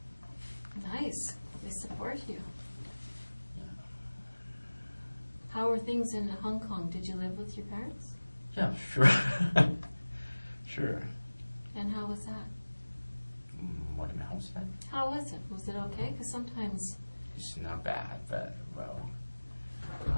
Nice. They support you. yeah. How are things in Hong Kong? Did you live with your parents? Yeah, sure. Sure. And how was that? What am I house at? How was it? Was it okay? Because sometimes... It's not bad, but, well,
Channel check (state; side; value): inverted; both; correlation -1.00